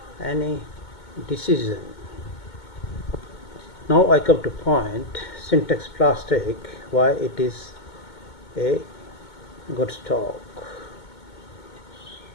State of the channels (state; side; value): late; right; 2.2 ms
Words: any decision. Now I come to point, Sintex plastic, why it is a good stock.